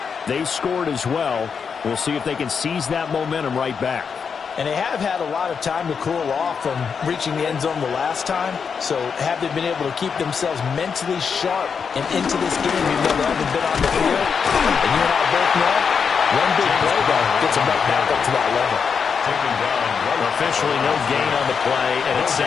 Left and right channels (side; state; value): right; quieter; 6.2 dB